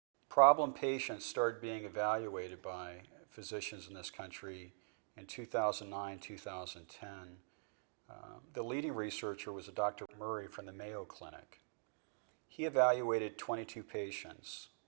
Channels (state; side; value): silent; left; digital silence